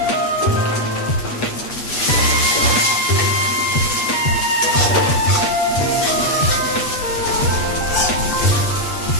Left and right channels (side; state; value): right; late; 8.3 ms